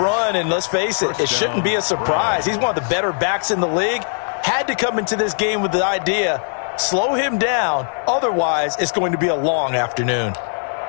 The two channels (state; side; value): silent; right; 66 dB below the other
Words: run. And let's face it, it shouldn't be a surprise. He's one of the better backs in the league. Had to come into this game with the idea, slow him down. Otherwise, it's going to be a long afternoon.